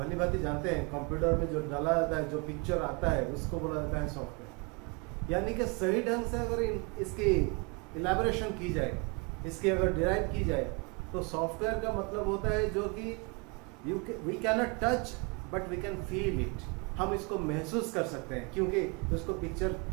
भांति जानते हैं, कंप्यूटर में जो डाला जाता है, जो पिक्चर आता है, उसको बोला जाता है सॉफ्टवेयर। यानी कि सही ढंग से अगर इसकी इलेबोरेशन की जाए, इसकी अगर डिराइव की जाए, तो सॉफ्टवेयर का मतलब होता है जो कि we can not touch but we can feel it. हम इसको महसूस कर सकते हैं, क्योंकि उसको पिक्चर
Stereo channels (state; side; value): quieter; left; 31.5 dB